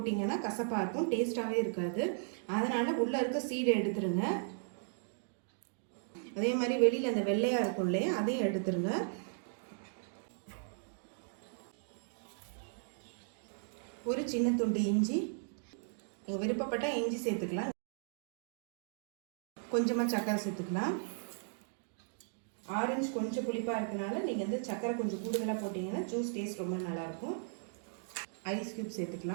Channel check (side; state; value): left; silent; digital silence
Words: கசப்பாக இருக்கும், டேஸ்ட்டாகவே இருக்காது. அதனால் உள்ளே இருக்க சீடை எடுத்துருங்க. அதே மாதிரி வெளியில் அந்த வெள்ளையாக இருக்கும் இல்லையா, அதையும் எடுத்துருங்க. ஒரு சின்ன துண்டு இஞ்சி, நீங்கள் விருப்பப்பட்டால் இஞ்சி சேர்த்துக்கலாம். கொஞ்சமாக சர்க்கரை சேர்த்துக்கலாம். ஆரஞ்சு கொஞ்சம் புளிப்பாக இருக்கனால நீங்கள் வந்து சர்க்கரை கொஞ்சம் கூடுதலாக போட்டிங்கன்னா ஜூஸ் டேஸ்ட் ரொம்ப நல்லாயிருக்கும். ஐஸ் க்யூப்